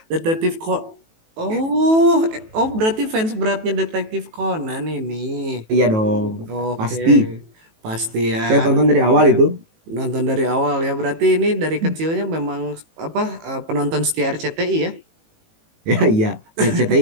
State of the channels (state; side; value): late; left; 18 ms